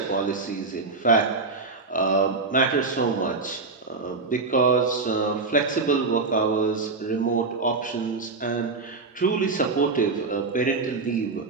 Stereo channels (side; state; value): left; quieter; 4.0 dB